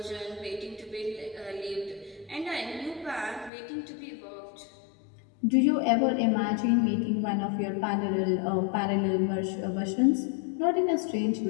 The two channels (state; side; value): drops out; right; at 3.5 s